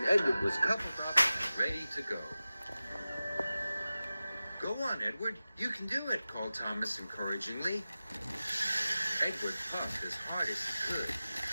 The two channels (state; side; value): inverted; both; correlation -0.95